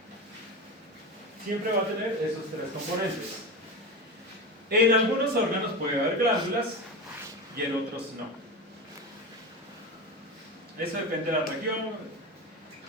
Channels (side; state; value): both; normal; correlation 0.23